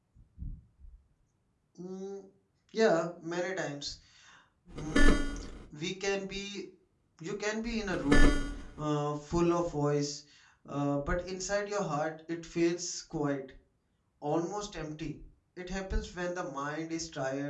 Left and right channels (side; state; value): both; identical; correlation 1.00